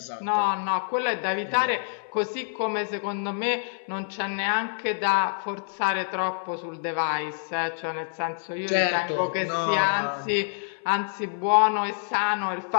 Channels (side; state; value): right; silent; 60 dB below the other